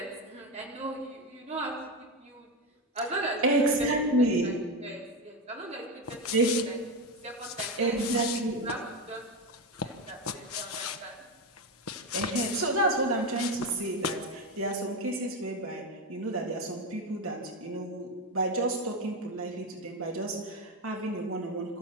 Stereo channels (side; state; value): both; normal; correlation 0.14